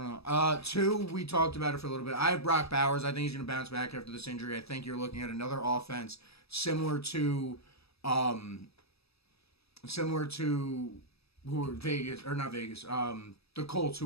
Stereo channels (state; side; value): late; right; 0.78 ms